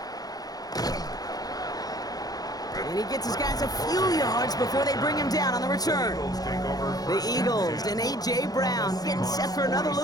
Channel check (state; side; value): late; right; 0.18 ms